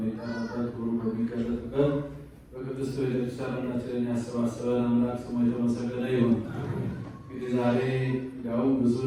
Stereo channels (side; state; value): both; identical; correlation 1.00